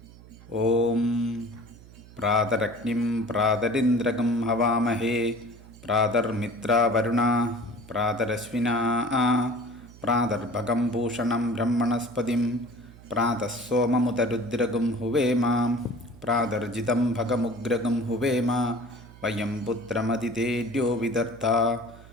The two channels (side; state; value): right; noise; hum, 21 dB below the sound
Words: ഓം പ്രാതരഗ്നിം പ്രാതരിന്ദ്രകം ഹവാമഹേ പ്രാതർമിത്രാവരുണ പ്രാതരശ്വിനാ പ്രാതർഭകം ഭൂഷണം ബ്രഹ്മണസ്പതിം പ്രാതഃസോമമുതരുദ്രഗം ഹുവേമ പ്രാതർജിതം ഭഗമുഗ്രഗം ഹുവേമ വയം പുത്രമതിതേര്യോ വിദർത്ത